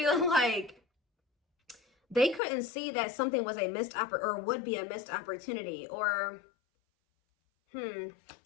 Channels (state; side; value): drops out; right; at 2.4 s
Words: like they couldn't see that something was a missed or would be a missed opportunity, or some